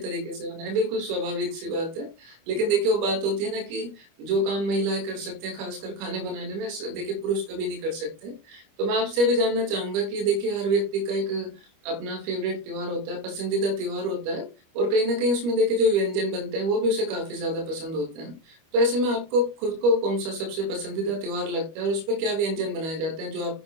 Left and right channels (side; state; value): left; late; 25 ms